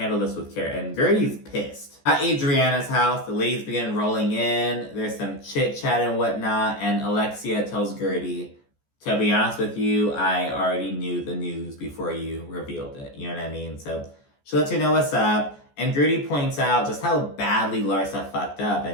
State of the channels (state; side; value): late; right; 14 ms